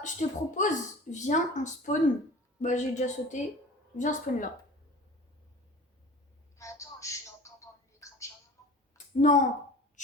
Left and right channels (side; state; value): both; normal; correlation 0.40